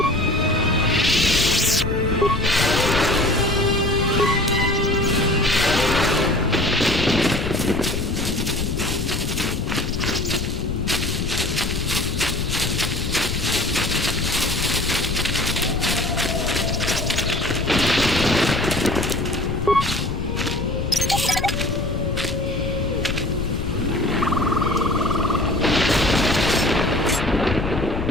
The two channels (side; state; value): left; noise; rumble, 3 dB below the sound